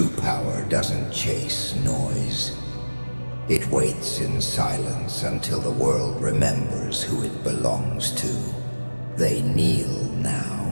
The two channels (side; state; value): both; inverted; correlation -1.00